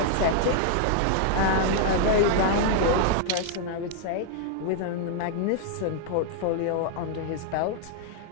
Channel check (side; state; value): both; different; correlation -0.01